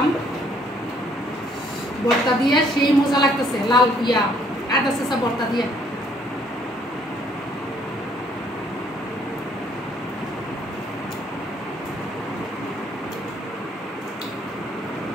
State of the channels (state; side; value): normal; both; correlation 0.64